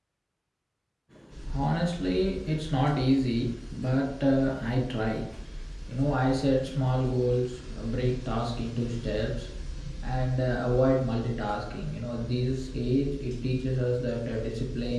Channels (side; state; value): both; identical; correlation 1.00